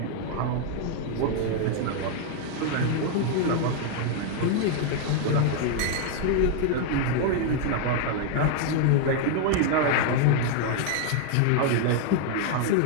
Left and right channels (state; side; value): different; both; correlation 0.00